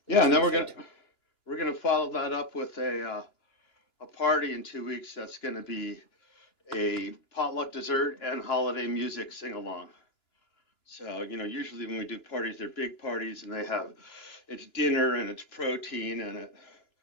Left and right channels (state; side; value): late; right; 2.9 ms